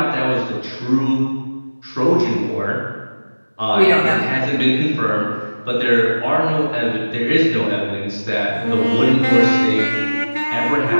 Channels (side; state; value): both; inverted; correlation -1.00